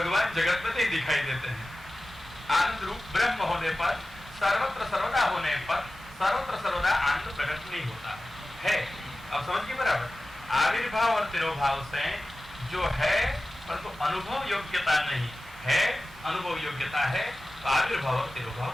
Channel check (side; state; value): both; normal; correlation 0.95